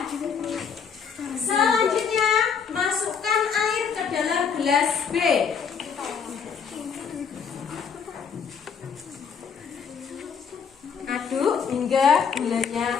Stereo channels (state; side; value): quieter; right; 6.6 dB